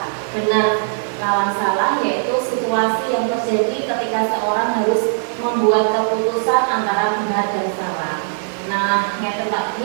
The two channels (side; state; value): left; silent; 66 dB below the other